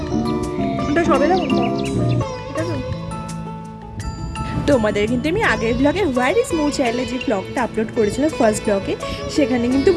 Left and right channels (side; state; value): both; identical; correlation 1.00